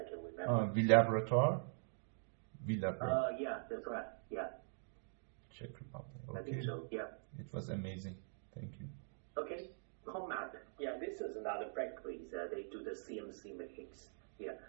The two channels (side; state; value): left; silent; digital silence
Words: can remember. Villabrator? Yeah, that's right. Yeah. Czech Republic. Okay. I think so. Yeah. It was amazing. Thank you. Okay, Comap. Yeah, this is another factory. They do the CNC machines. Yeah,